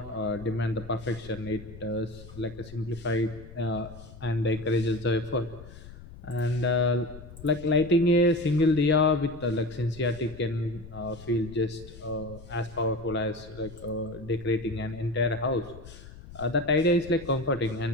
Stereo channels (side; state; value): left; noise; rumble, 16 dB below the sound